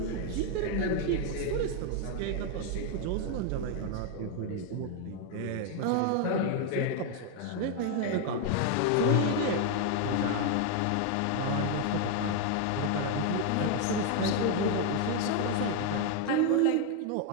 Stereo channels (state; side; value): different; both; correlation 0.01